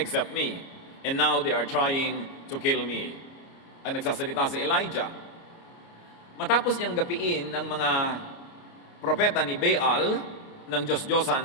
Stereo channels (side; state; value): right; late; 29 ms